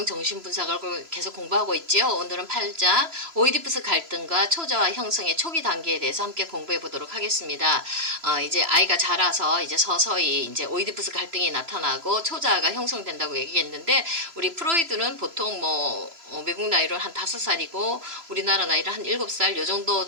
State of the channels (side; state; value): left; late; 3.0 ms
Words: 정신분석을 계속 공부하고 있지요. 오늘은 8장 오이디푸스 갈등과 초자아 형성의 초기 단계에 대해서 함께 공부해 보도록 하겠습니다. 이제 아이가 자라서 이제 서서히 이제 오이디푸스 갈등이 나타나고 초자아가 형성된다고 얘기했는데, 우리 프로이드는 보통 외국 나이로 한 5살이고 우리나라 나이로 한 7살 요